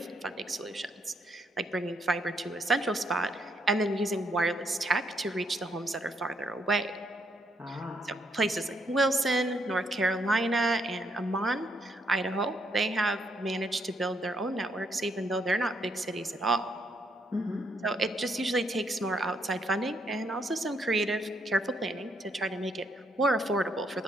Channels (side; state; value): both; normal; correlation 0.74